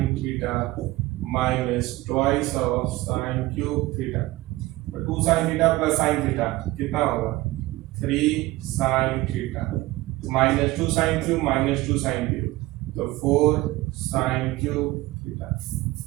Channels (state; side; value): quieter; left; 18.7 dB